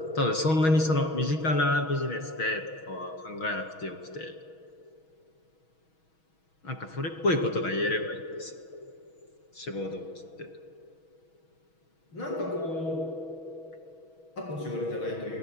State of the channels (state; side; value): late; right; 6.2 ms